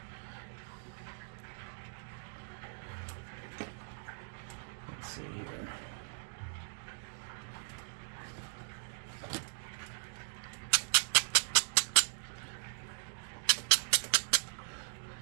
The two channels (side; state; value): left; silent; digital silence